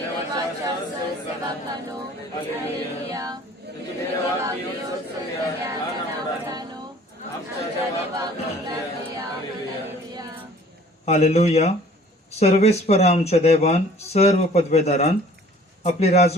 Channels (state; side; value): normal; both; correlation 0.52